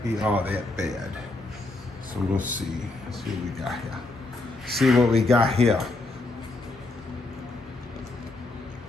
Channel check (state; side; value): quieter; right; 3.1 dB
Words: be all that bad. So we'll see. Let's see what we got here. See what we got here.